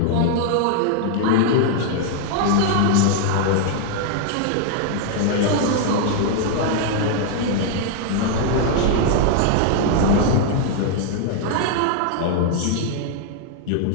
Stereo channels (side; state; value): both; different; correlation 0.00